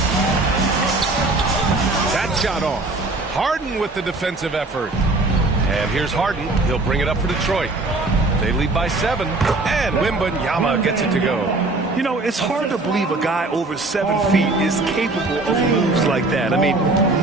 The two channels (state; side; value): quieter; left; 3.1 dB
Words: That shot off. Harden with the defensive effort. And here's Harden. He'll bring it up for Detroit. They lead by 7, and Wembanyama gets it to go. You know, it's hard to believe a guy over 7 feet is capable of moves like that. I mean,